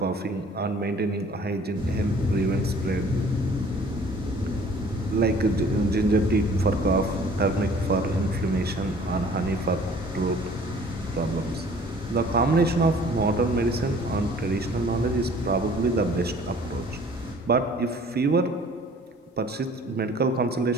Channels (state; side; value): normal; both; correlation 0.52